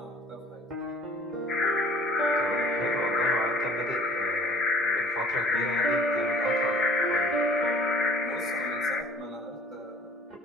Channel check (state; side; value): normal; both; correlation 0.51